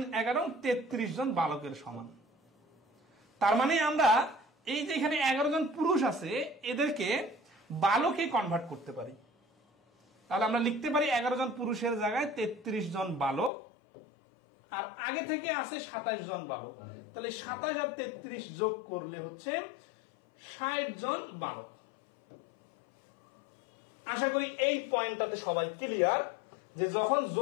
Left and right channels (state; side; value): drops out; right; at 13.5 s